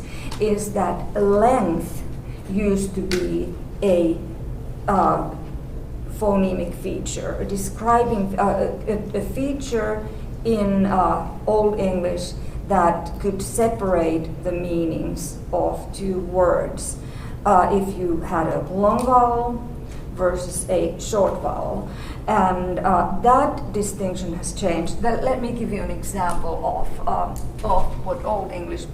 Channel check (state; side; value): identical; both; correlation 1.00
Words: is that length used to be a phonemic feature, describing a feature in Old English that could separate the meanings of two words. If you had a long vowel versus a short vowel. And that distinction has changed. Let me give you an example of what Old English